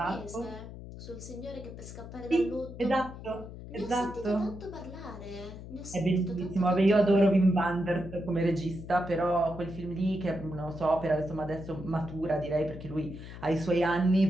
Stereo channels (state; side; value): noise; left; hum, 12 dB below the sound